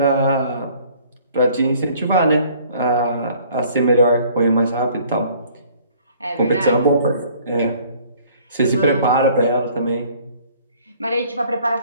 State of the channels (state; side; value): inverted; both; correlation -0.56